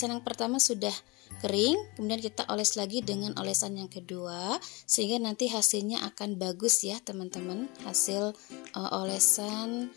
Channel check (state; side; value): quieter; right; 25.6 dB